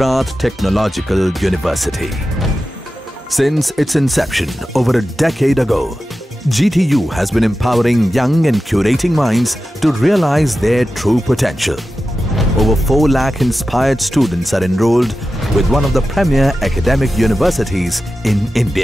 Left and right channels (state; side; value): normal; both; correlation 0.93